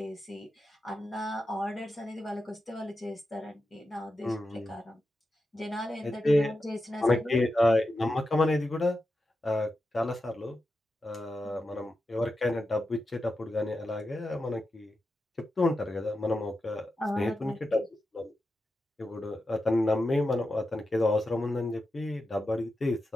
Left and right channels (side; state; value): both; normal; correlation 0.89